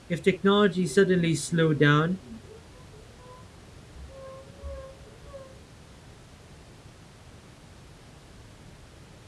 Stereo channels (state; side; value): identical; both; correlation 1.00